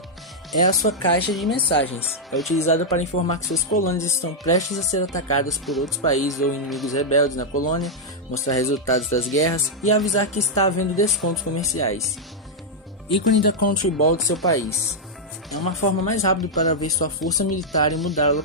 É a sua caixa de mensagens. É utilizada para informar que suas colônias estão prestes a ser atacadas por outros países ou inimigos rebeldes na colônia, mostrar resultados das guerras e avisar que está havendo descontos comerciais. Ícone da Country Ball do seu país. É uma forma mais rápida para ver sua força militar e mudar a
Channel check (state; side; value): normal; both; correlation -0.04